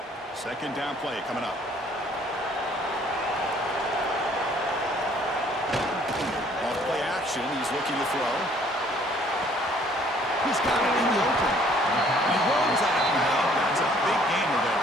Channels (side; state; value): both; normal; correlation 0.59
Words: 2nd down play coming up. On play action, he's looking to throw. He's got it in the open. He runs out. That's a big gainer there.